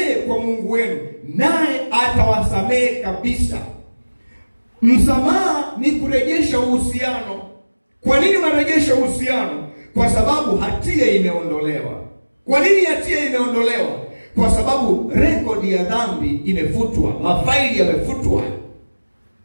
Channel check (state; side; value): inverted; both; correlation -1.00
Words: kwa Mungu wenu naye atawasamehe kabisa. Msamaha ni kurejesha uhusiano. Kwa nini unarejesha uhusiano? Kwa sababu hatia imeondolewa. Kwa nini hatia imeondolewa? Kwa sababu rekodi ya dhambi imefutwa. Mafaili yamefutwa.